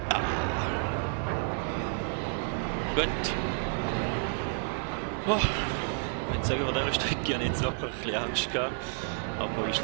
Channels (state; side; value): silent; left; 58 dB below the other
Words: Gut. Oh. Ich würde sagen, von dieser Strecke habe ich jetzt wirklich ein bisschen Angst gehabt. Aber